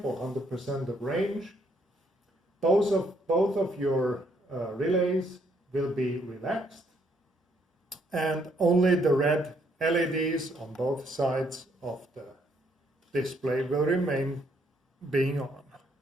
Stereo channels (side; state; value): both; normal; correlation 0.70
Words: or 100% of range, both of your relays will be relaxed, and only the red LEDs on both sides of the display will remain being on.